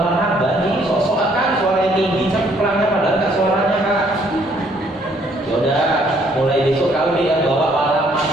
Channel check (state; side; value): normal; both; correlation 0.65